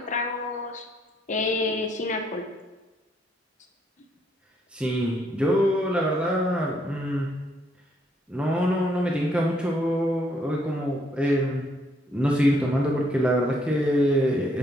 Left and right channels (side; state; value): both; normal; correlation 0.70